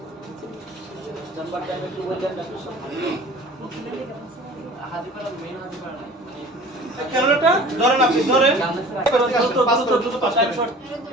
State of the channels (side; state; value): both; normal; correlation 0.44